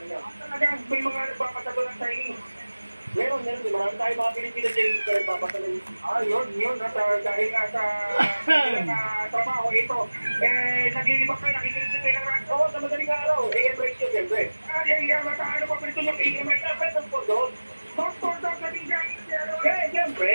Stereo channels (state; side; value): inverted; both; correlation -1.00